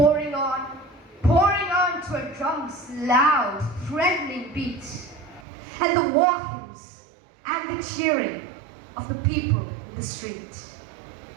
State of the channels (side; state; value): left; drops out; at 5.4 s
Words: on to a drum's loud, threatening beat, and the war hymns and the cheering of the people in the street.